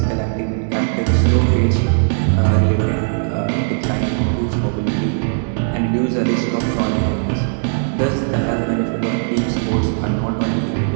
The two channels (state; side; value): silent; left; digital silence